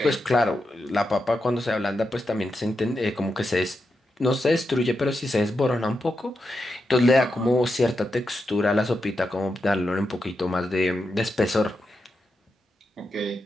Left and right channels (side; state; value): both; normal; correlation 0.87